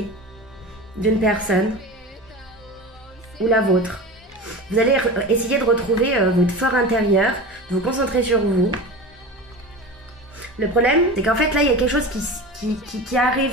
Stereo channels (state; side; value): normal; both; correlation 0.31